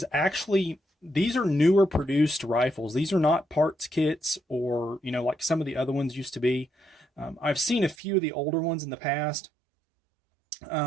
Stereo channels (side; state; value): left; drops out; at 8.0 s